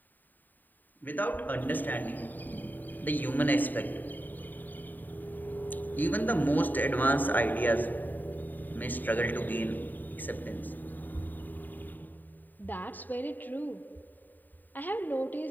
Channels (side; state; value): right; late; 0.088 ms